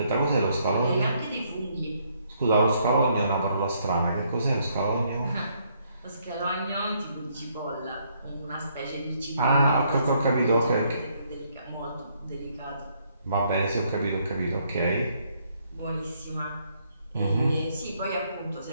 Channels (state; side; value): inverted; both; correlation -0.70